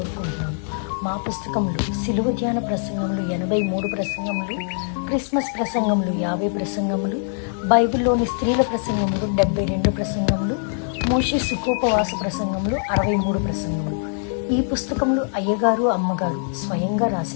మా పుస్తకంలో సిలువ ధ్యాన ప్రసంగములు 83 ప్రసంగములు, క్రిస్మస్ ప్రసంగములు 50 ప్రసంగములు, బైబిల్లోని స్త్రీల ప్రసంగములు 72 ప్రసంగములు, మోషే సుఖోపవాస ప్రసంగములు 63 ప్రసంగములు. ఈ పుస్తకములు అయ్యగారు అమ్మగారు స్వయంగా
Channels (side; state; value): right; silent; digital silence